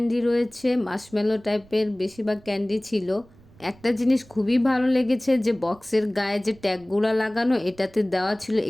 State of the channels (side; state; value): right; noise; rumble, 26 dB below the sound